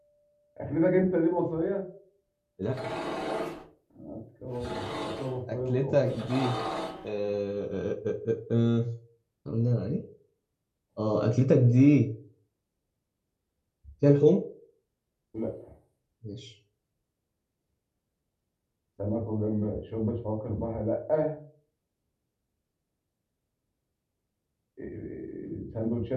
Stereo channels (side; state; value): both; identical; correlation 1.00